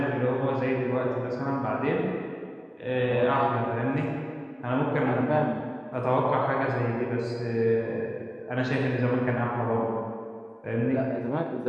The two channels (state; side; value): identical; both; correlation 1.00